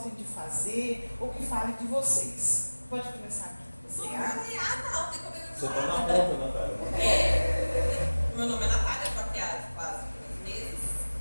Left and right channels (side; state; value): both; inverted; correlation -1.00